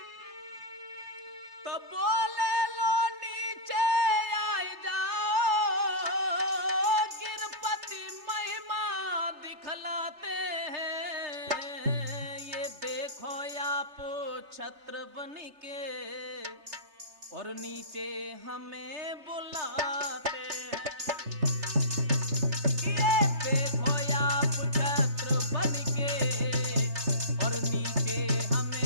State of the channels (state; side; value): late; left; 3.3 ms